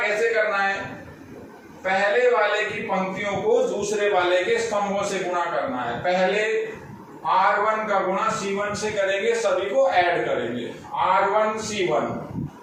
कैसे करना है, पहले वाले की पंक्तियों को दूसरे वाले के स्तंभों से गुणा करना है। पहले R1 का गुणा C1 से करेंगे, सभी को ऐड करेंगे, R1 C1।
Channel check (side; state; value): both; identical; correlation 1.00